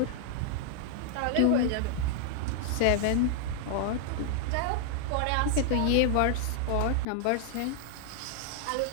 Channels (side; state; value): both; different; correlation -0.01